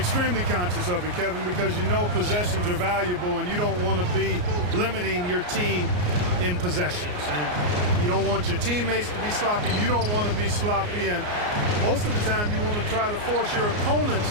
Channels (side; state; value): left; late; 34 ms